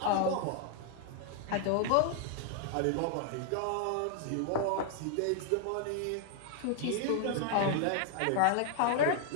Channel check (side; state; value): both; different; correlation 0.00